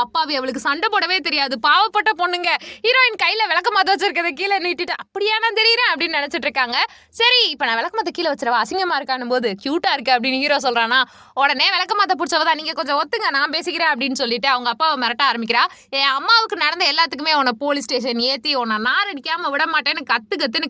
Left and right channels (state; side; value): identical; both; correlation 1.00